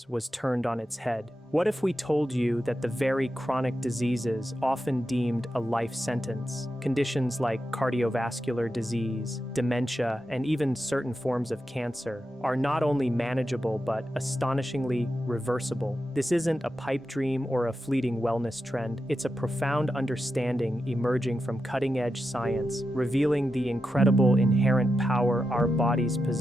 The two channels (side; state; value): both; normal; correlation 0.89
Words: was turned on its head. What if we told you that the very chronic diseases often deemed a life sentence, conditions like cardiovascular disease, dementia, and even certain forms of cancer, are not only manageable but astonishingly reversible? This isn't a pipe dream or a fleeting wellness trend. It's a profound understanding emerging from cutting-edge science, revealing the incredible inherent power our bodies